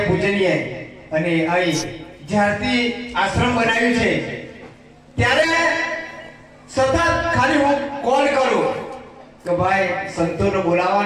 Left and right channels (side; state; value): both; identical; correlation 1.00